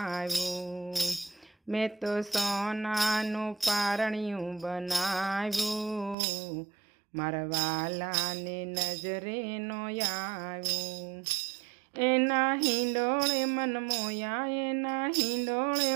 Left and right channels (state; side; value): drops out; left; at 6.2 s